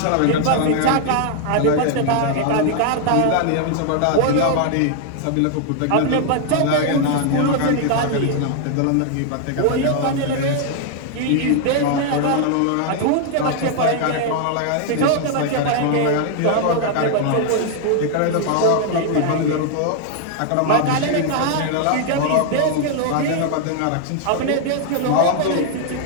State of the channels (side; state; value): both; different; correlation 0.00